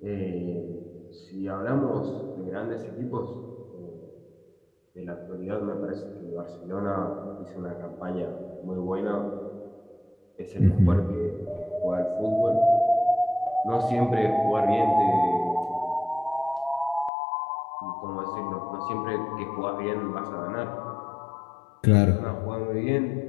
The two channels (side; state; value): right; drops out; at 17.1 s